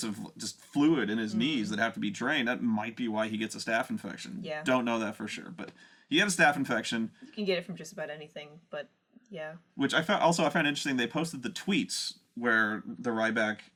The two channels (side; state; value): both; identical; correlation 1.00